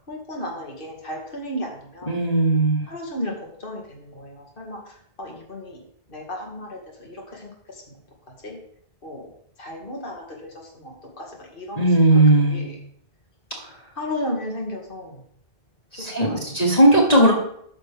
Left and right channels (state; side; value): late; right; 1.9 ms